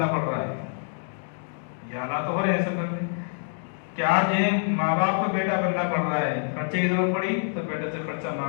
پڑ رہا ہے۔ یہ حالات ہو رہے ہیں سب گھر میں کہ آج یہ ماں باپ کو بیٹا بننا پڑ رہا ہے، خرچے کی ضرورت پڑی تو بیٹے سے خرچہ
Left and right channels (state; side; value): silent; right; digital silence